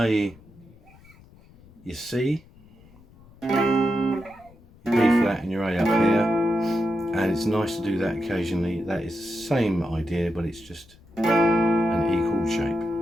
your C, your B flat and your A up here, and it's nice to do that occasionally. That is the same idea, but it's just an E chord shape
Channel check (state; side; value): noise; left; rumble, 25 dB below the sound